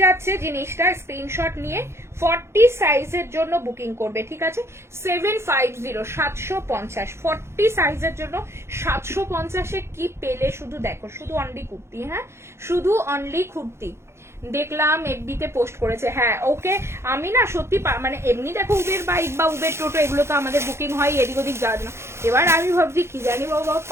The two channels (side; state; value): left; late; 0.13 ms